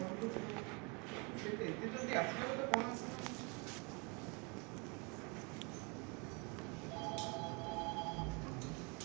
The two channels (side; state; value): left; quieter; 31.3 dB